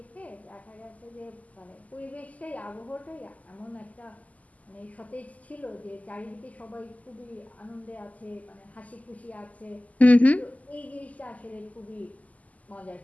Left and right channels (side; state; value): right; late; 0.074 ms